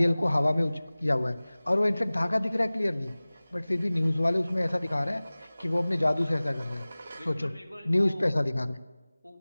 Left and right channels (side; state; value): both; inverted; correlation -0.99